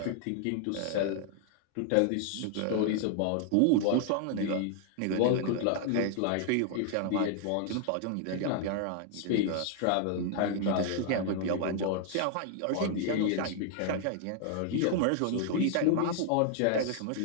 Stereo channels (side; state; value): both; different; correlation 0.00